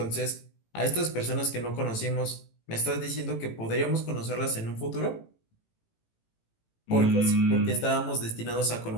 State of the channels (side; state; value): right; late; 18 ms